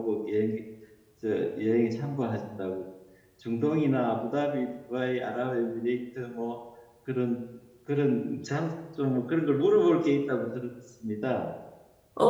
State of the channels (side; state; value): both; identical; correlation 1.00